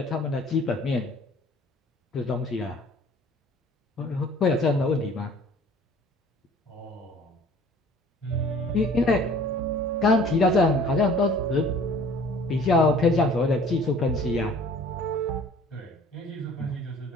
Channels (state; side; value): normal; both; correlation 0.50